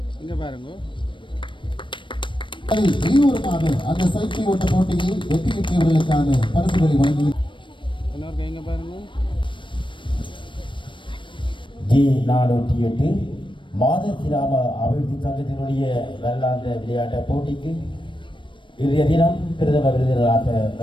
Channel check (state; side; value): late; right; 0.24 ms